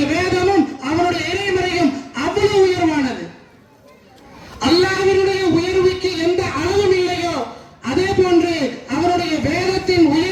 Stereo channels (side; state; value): both; identical; correlation 1.00